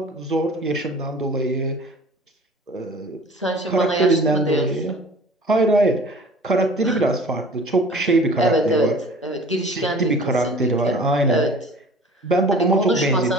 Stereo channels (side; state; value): both; normal; correlation 0.45